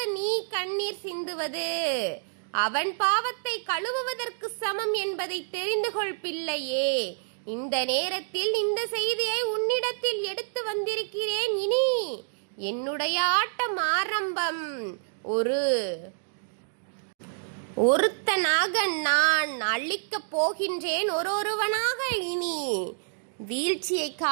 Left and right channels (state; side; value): silent; left; digital silence